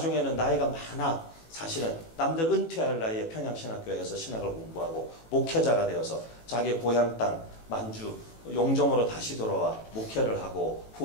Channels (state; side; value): late; right; 18 ms